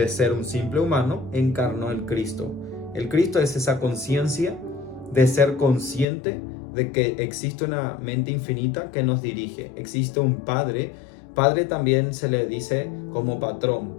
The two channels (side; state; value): right; drops out; at 6.1 s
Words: ser un simple humano, encarnó el Cristo. El Cristo es esa conciencia de ser consciente de que existe una mente infinita que nos dirige, existe un Padre. Padre también se le dice como patrón.